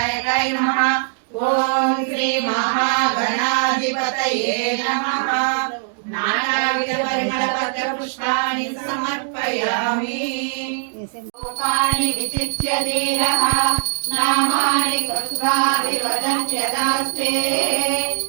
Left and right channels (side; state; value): left; silent; digital silence